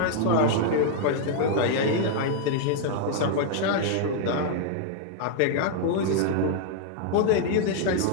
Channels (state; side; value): different; both; correlation -0.01